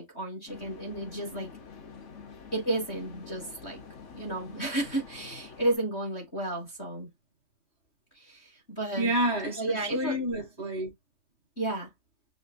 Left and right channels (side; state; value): right; late; 3.2 ms